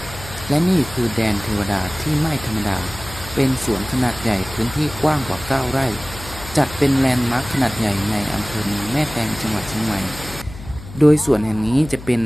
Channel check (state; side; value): noise; left; hum, 14 dB below the sound